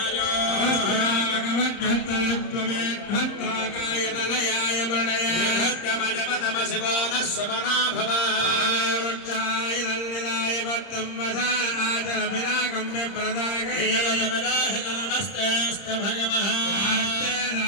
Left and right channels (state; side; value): late; right; 30 ms